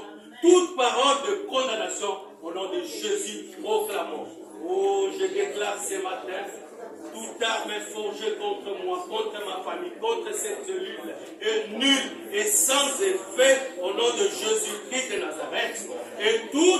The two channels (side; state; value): both; identical; correlation 1.00